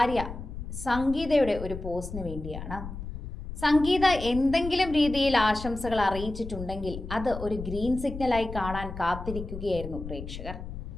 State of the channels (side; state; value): left; noise; rumble, 9 dB below the sound